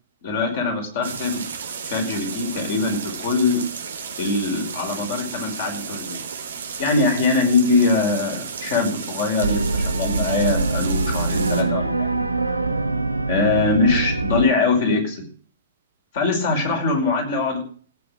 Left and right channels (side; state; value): both; inverted; correlation -0.38